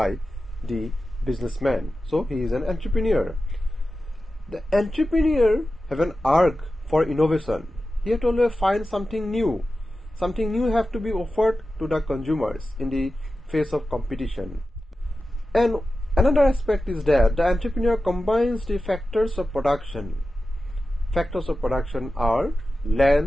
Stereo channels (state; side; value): normal; both; correlation 0.93